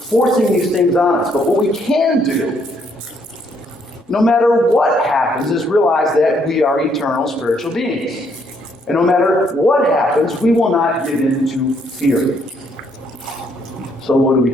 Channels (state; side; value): normal; both; correlation 0.70